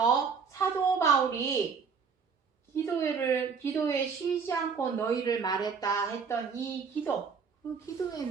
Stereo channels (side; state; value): left; quieter; 5.8 dB